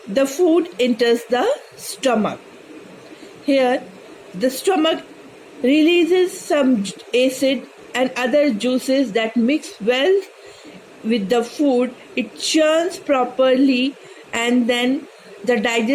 the food enters the stomach. Here, the stomach releases some acid and other juices that mix well with the food. It churns properly, and then the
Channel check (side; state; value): both; identical; correlation 1.00